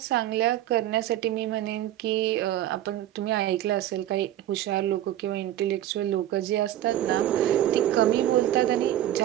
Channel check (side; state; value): left; quieter; 12.8 dB